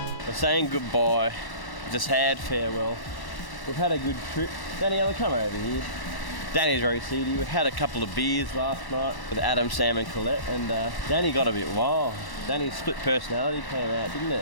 We're saying goodbye, it's a sad farewell. We've had a good trip. Daniela, come over here. Danny's very seedy. We had a couple of beers last night with Adam, Sam and Colette, and Danny got a bit wild. Danny's split personality came out, didn't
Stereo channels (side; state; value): right; late; 1.1 ms